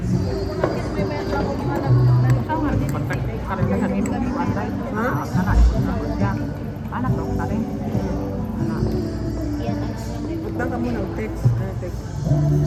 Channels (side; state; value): both; identical; correlation 1.00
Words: May meron ako mga Sama, karanasan ini di pantai. Ha? Anak kerja. Anak dong, tadi. Anak. Punta ka muna, text. Text.